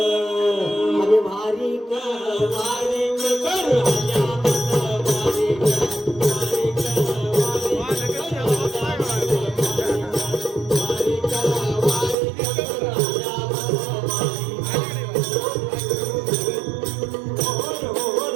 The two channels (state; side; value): drops out; left; at 12.2 s